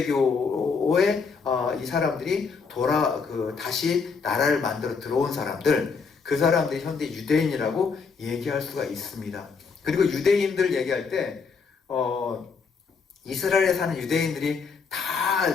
이 사람들이 다시 나라를 만들어 들어온 사람들, 그 사람들이 현재 유대인이라고 얘기할 수가 있습니다. 그리고 유대인들 얘기할 때 이스라엘에 사는 유대인들이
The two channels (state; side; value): quieter; right; 5.2 dB